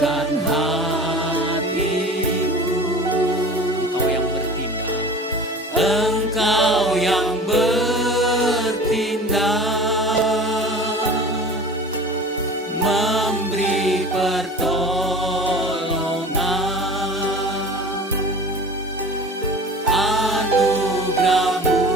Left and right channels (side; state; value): both; normal; correlation 0.38